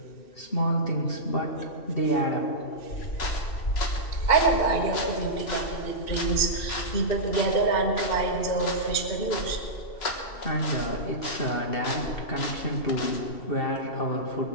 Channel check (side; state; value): right; late; 2.7 ms